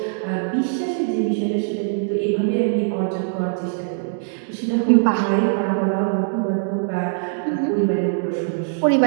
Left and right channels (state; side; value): silent; left; digital silence